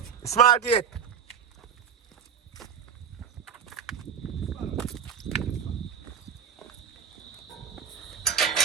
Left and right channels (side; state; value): left; quieter; 7.6 dB